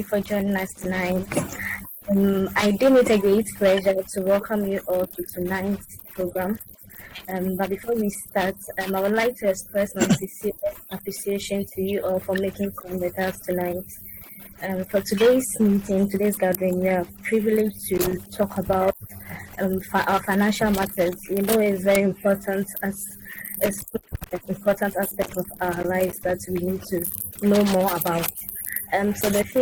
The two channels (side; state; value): both; identical; correlation 1.00